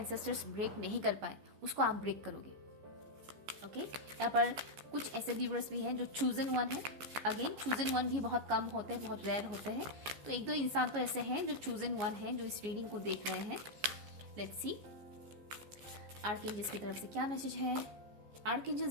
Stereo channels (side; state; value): left; late; 14 ms